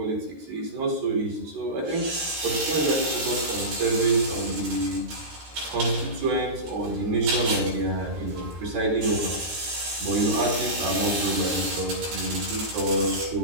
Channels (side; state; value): left; late; 13 ms